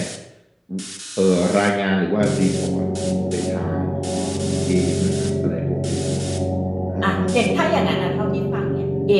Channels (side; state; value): both; identical; correlation 1.00